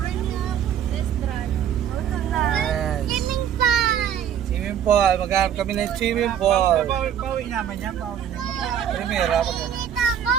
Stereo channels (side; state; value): left; quieter; 9.5 dB